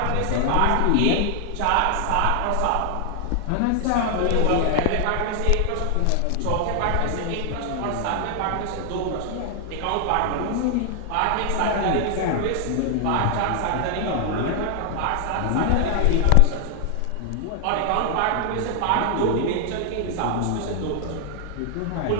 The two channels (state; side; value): different; both; correlation 0.00